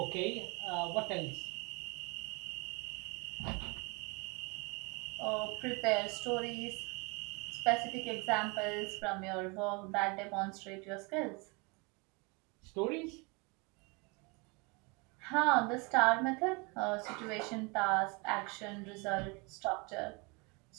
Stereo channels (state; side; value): quieter; left; 29.5 dB